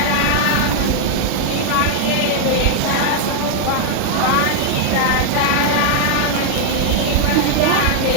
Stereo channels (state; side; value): different; both; correlation 0.00